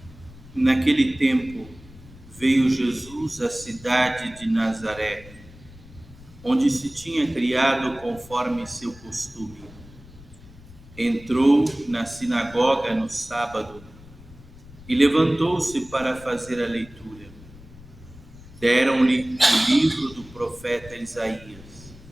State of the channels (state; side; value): noise; left; rumble, 20 dB below the sound